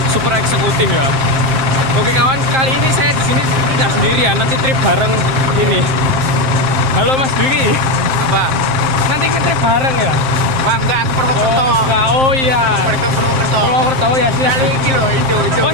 super eksekutif ya. Oke kawan, kali ini saya di sini tidak sendirian, nanti trip bareng ini. Halo Mas Dwi. Apa? Nanti ngetrip bareng ya? Bang, enggak, ke Purwokerto. Oh, enggak. Oh iya. Purwokerto. Purwokerto ya sih. Kali ini loh, itu.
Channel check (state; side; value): late; left; 7.6 ms